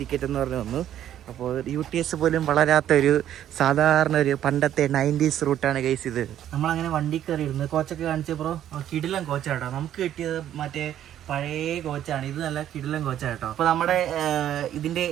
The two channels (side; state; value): left; quieter; 11.2 dB